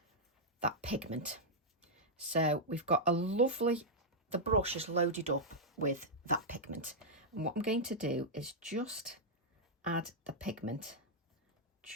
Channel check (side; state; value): both; normal; correlation -0.06